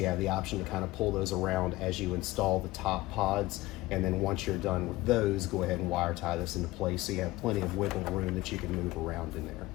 have the option to kind of pull those around as you install the top pods. And then once you're done with those, go ahead and wire tie this into place so you have plenty of wiggle room that you can move around in there.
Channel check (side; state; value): right; quieter; 18.8 dB